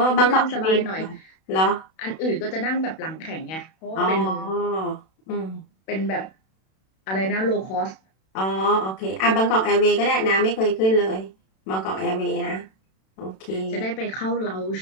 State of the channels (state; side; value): late; right; 32 ms